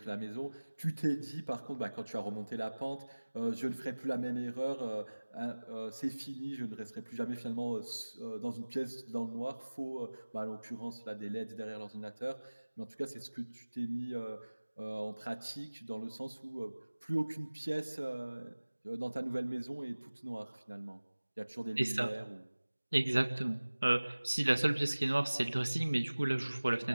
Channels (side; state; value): both; inverted; correlation -1.00